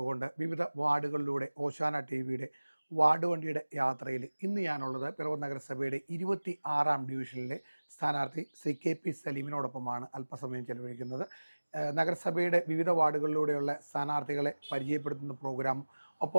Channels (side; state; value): both; inverted; correlation -1.00